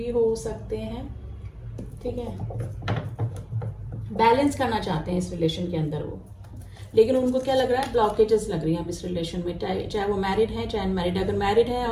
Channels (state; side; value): identical; both; correlation 1.00